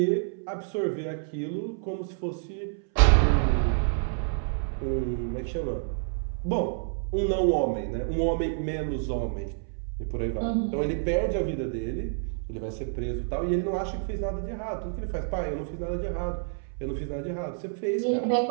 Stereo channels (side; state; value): left; silent; 59 dB below the other